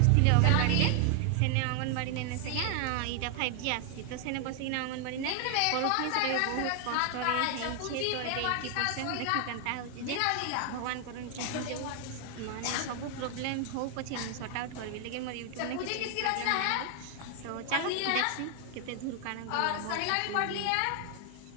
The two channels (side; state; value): both; different; correlation 0.00